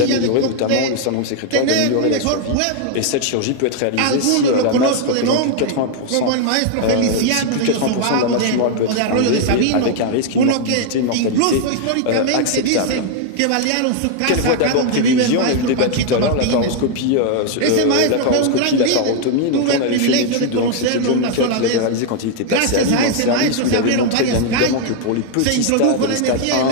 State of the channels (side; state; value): both; different; correlation 0.00